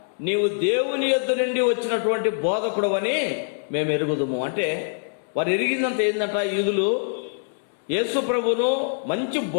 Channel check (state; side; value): silent; right; 63 dB below the other